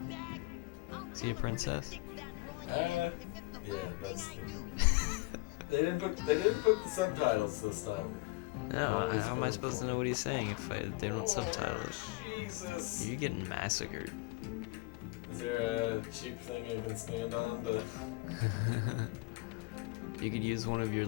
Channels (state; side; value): quieter; right; 24.3 dB